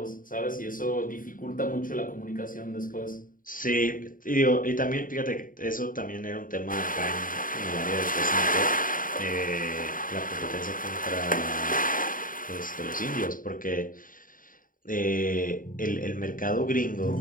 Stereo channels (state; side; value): late; right; 0.40 ms